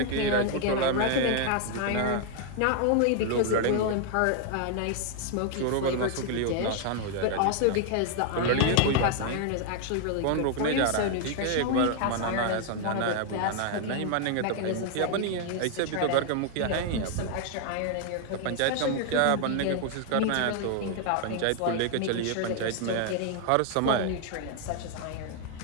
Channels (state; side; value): different; both; correlation 0.00